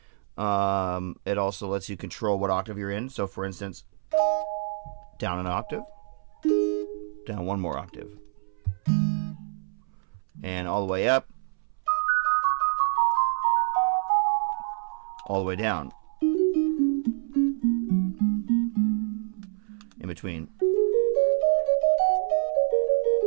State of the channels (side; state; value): left; silent; 60 dB below the other